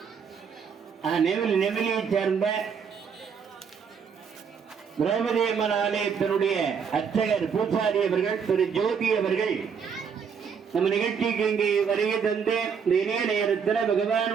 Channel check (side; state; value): left; quieter; 6.6 dB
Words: நெமிலியைச் சேர்ந்த திரௌபதி அம்மன் ஆலயத்தினுடைய அர்ச்சகர் பூசாரி அவர்கள் திரு ஜோதி அவர்கள் நம்ம நிகழ்ச்சிக்கு இங்கே வருகை தந்து இந்த இணைய நேரத்தில்